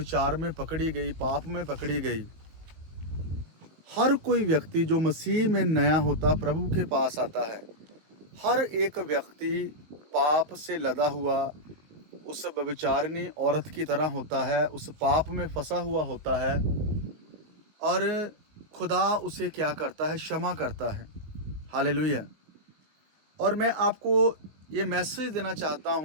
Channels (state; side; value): late; left; 19 ms